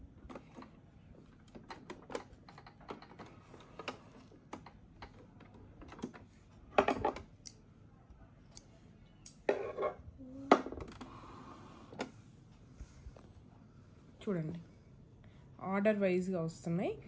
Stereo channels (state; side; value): identical; both; correlation 1.00